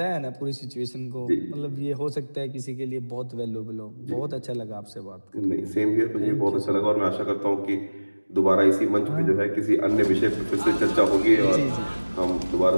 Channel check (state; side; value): inverted; both; correlation -1.00